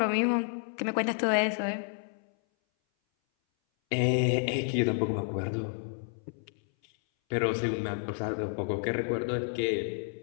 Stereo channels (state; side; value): silent; right; 58 dB below the other